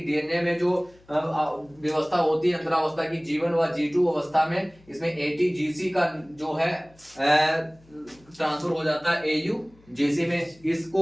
में जो व्यवस्था होती है अंतरावस्था की G1 व G2 अवस्था में, इसमें एटीजीसी का जो है ट्रांसफर हो जाता है एयूजीसी में।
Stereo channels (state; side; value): noise; left; hum, 29 dB below the sound